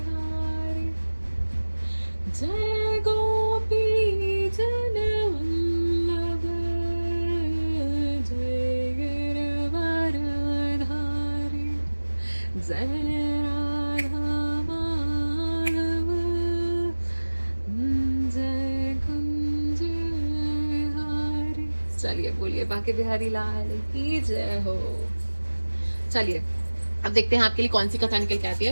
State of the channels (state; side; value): inverted; both; correlation -1.00